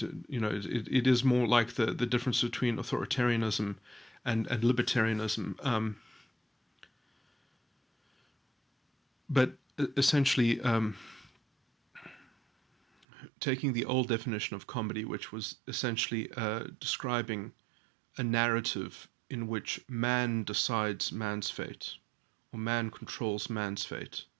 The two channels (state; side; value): drops out; left; at 13.1 s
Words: is more like the difference between authoritarianism and libertarianism. But essentially, taking the old definition of comedy, which was essentially describing a narrative in which man decides man's fate, or man controls man's fate,